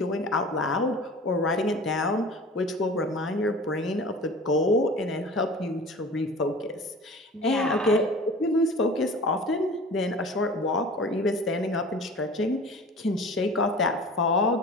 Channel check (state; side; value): normal; both; correlation 0.40